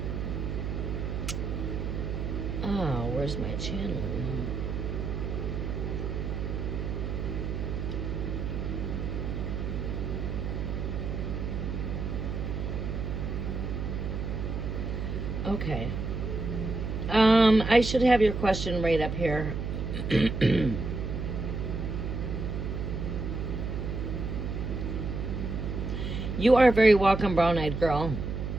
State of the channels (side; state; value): right; noise; hum, 3 dB below the sound